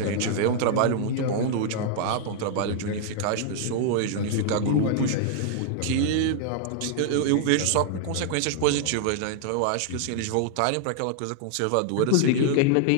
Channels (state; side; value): different; both; correlation -0.01